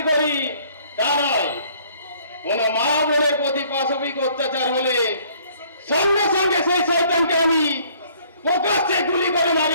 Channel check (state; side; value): inverted; both; correlation -0.59